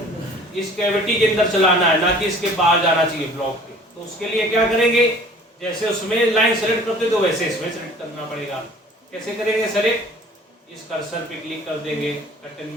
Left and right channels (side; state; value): both; normal; correlation 0.49